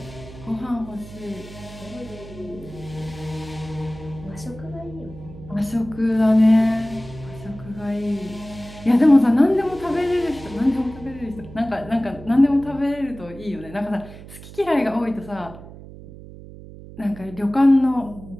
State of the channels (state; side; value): noise; right; hum, 16 dB below the sound